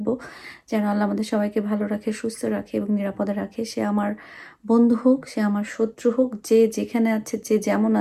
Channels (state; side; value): identical; both; correlation 1.00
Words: যেন আল্লাহ আমাদের সবাইকে ভালো রাখে, সুস্থ রাখে এবং নিরাপদে রাখে। সে আমার বন্ধু হোক, সে আমার শত্রু হোক, যে যেখানে আছে, যে যেমন